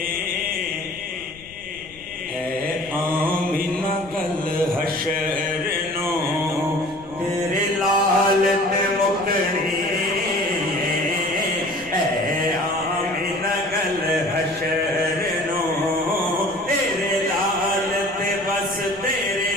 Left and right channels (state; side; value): noise; left; rumble, 21 dB below the sound